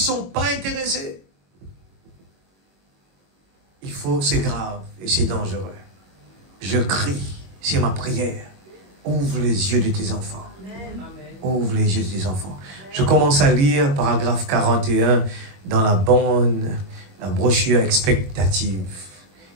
sont pas intéressés. C'est grave et c'est dangereux. Je crie, c'est ma prière. Ouvre les yeux de tes enfants. Ouvre les yeux de tes enfants. Je commence à lire paragraphe 41 dans la brochure expectative.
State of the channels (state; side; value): late; left; 21 ms